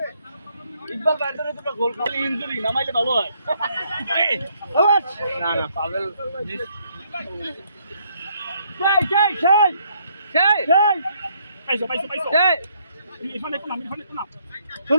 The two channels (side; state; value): both; inverted; correlation -0.69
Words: ইকবাল ব্যাটারে দুটো গোল খালি ইনজুরি নামাইলে ভালো হয় না না পাগল